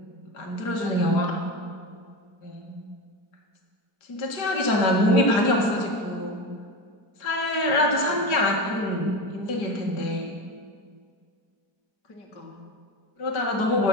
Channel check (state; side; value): late; right; 5.0 ms